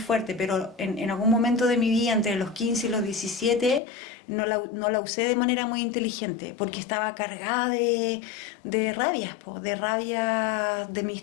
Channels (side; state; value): right; drops out; at 3.8 s